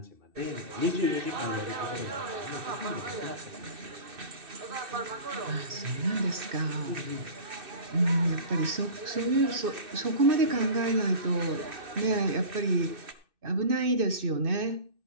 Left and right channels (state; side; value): late; left; 2.6 ms